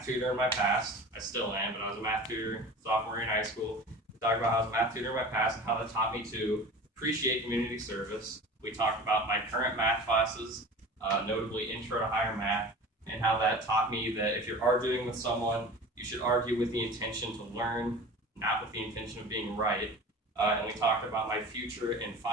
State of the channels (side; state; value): both; normal; correlation 0.37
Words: tutor in my past. I still am, but I was a math tutor sophomore year in high school. We talked about how I was a math tutor in my past and how that taught me to appreciate community service. We talked about my current math classes, notably Intro to Higher Math, and how that taught me that if you're arguing with someone, you should argue with the intention to learn, not with the intention of being right. And we talked about my future in